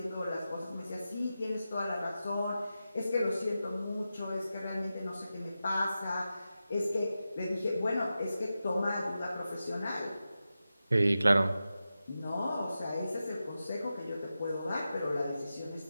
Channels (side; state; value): both; inverted; correlation -0.91